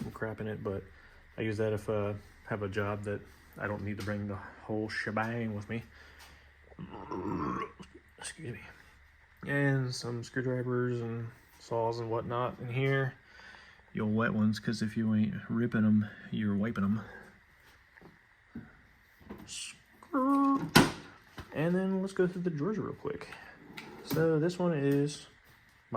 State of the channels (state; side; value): identical; both; correlation 1.00